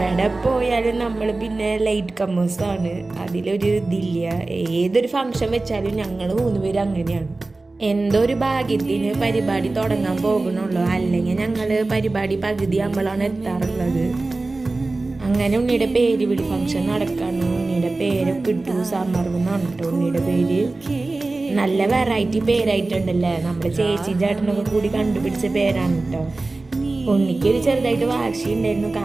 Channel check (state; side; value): quieter; left; 3.3 dB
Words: പോയാലും നമ്മൾ പിന്നെ ലൈറ്റ് കമ്മേഴ്സാണ്, അതിലൊരു ഇതില്ല. ഏതൊരു ഫംഗ്ഷൻ വെച്ചാലും ഞങ്ങൾ 3 പേര് അങ്ങനെയാണ്. എന്തോ ഒരു ഭാഗ്യത്തിന് പരിപാടി തുടങ്ങാൻ പോകണുള്ളൂ, അല്ലെങ്കിൽ ഞങ്ങൾ പരിപാടി പകുതി ആകുമ്പോഴാണ് എത്താറുള്ളത്. അങ്ങനെ ഉണ്ണിയുടെ പേര് വിളി ഫംഗ്ഷൻ നടക്കാണ്. ഉണ്ണിയുടെ പേരൊക്കെ ഇട്ടു, സമർവെന്നാണ് കേട്ടോ ഉണ്ണിയുടെ പേര്. നല്ല വെറൈറ്റി പേരായിട്ടുണ്ടല്ലേ, നമ്മുടെ ചേച്ചി ചേട്ടനൊക്കെ കൂടി കണ്ടുപിടിച്ച പേരാണ് കേട്ടോ. ഉണ്ണിക്കൊരു ചെറുതായിട്ട് വാശി ഉണ്ടായിരുന്നു,